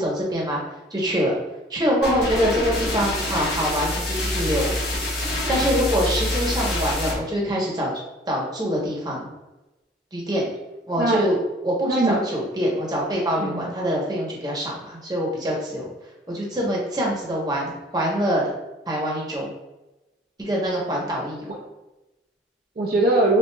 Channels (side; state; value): both; normal; correlation 0.49